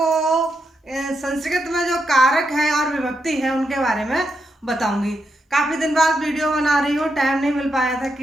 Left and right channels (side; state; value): both; normal; correlation 0.83